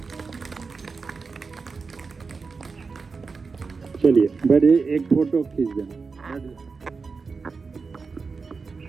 चलिए बड़े एक फोटो खींच देना।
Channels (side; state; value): left; quieter; 4.7 dB